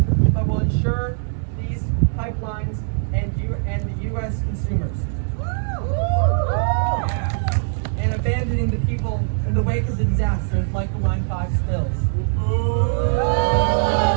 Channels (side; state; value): left; silent; 65 dB below the other